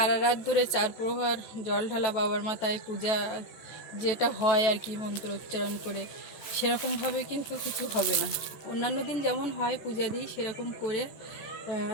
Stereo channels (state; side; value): late; right; 14 ms